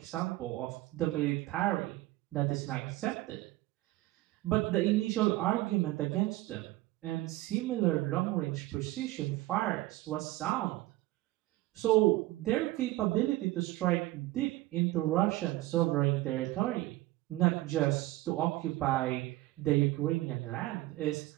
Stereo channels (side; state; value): left; quieter; 17.8 dB